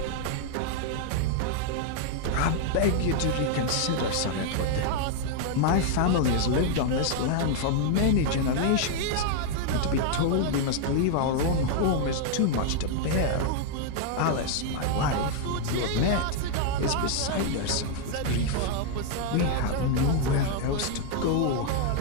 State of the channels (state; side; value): different; both; correlation 0.00